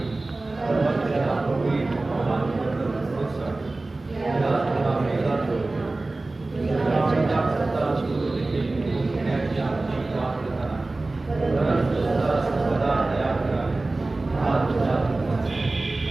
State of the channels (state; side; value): quieter; left; 3.2 dB